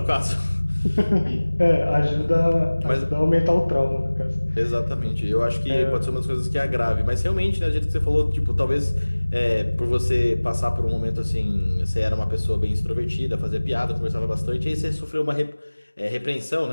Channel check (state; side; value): inverted; both; correlation -1.00